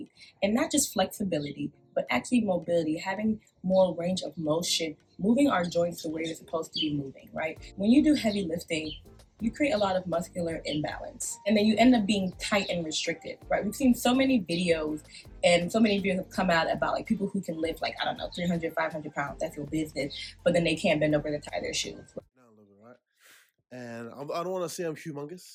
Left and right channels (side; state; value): both; identical; correlation 1.00